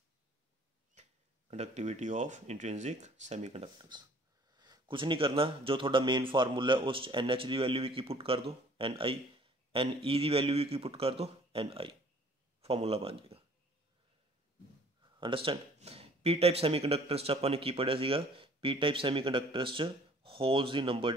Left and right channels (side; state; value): both; normal; correlation 0.54